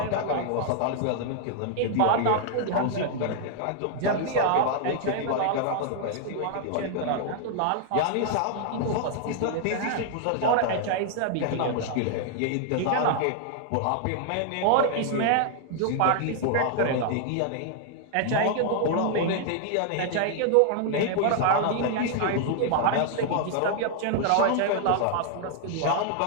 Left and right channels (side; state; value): both; different; correlation 0.00